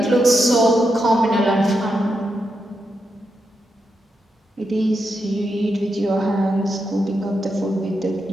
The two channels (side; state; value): both; normal; correlation 0.85